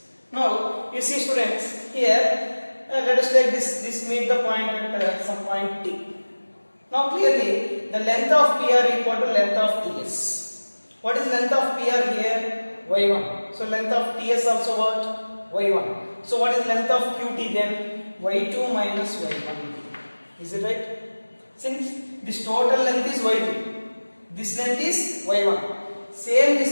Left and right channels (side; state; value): both; inverted; correlation -1.00